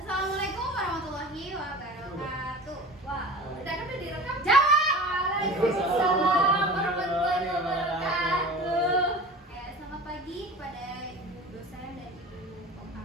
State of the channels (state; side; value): normal; both; correlation 0.37